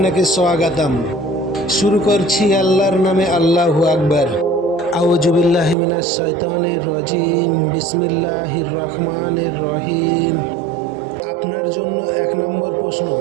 স্বাগতম। শুরু করছি আল্লাহর নামে, আল্লাহু আকবার। আউযু বিল্লাহি মিনাশ শাইতানির রাজিম। বিসমিল্লাহির রহমানির রহিম। আপনার জন্য 1 নম্বর প্রশ্ন,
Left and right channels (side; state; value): left; drops out; at 5.8 s